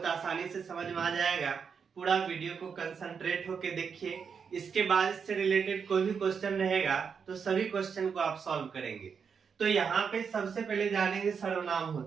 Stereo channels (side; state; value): left; quieter; 6.3 dB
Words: आसानी से समझ में आ जाएगा। पूरा वीडियो को कंसंट्रेट होके देखिए। इसके बाद इससे रिलेटेड कोई भी क्वेश्चन रहेगा तो सभी क्वेश्चन को आप सॉल्व करेंगे। तो यहाँ पे सबसे पहले जानेंगे सर्वनाम